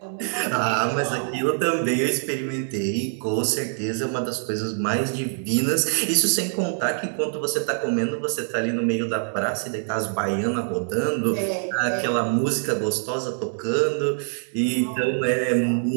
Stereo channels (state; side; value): silent; left; 62 dB below the other